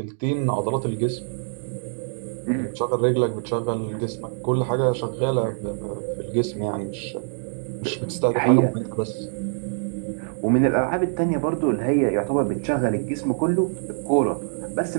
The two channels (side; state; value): left; silent; 62 dB below the other